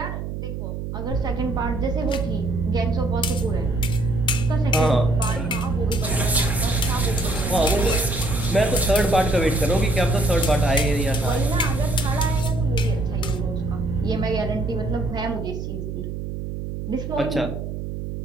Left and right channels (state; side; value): noise; right; hum, 6 dB below the sound